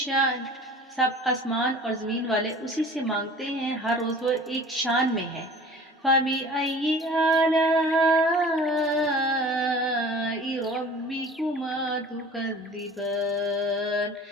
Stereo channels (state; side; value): normal; both; correlation 0.44